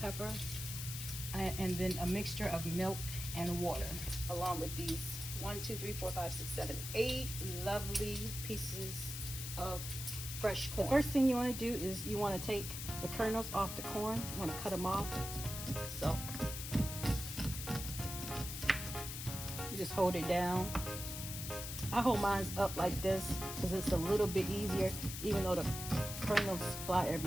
and then a mixture of milk and water, along with these 8 lovely pieces of fresh corn. First thing you want to do is you want to take the kernels off the corn. You want to cut them off. So you just hold it down. I hold mine up like this because it's a little bit easier, even though the kernels fly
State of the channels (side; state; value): left; noise; hiss, 6 dB below the sound